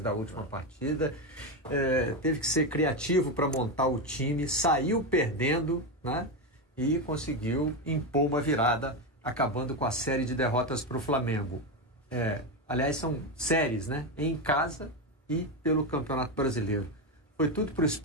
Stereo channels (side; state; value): both; normal; correlation 0.12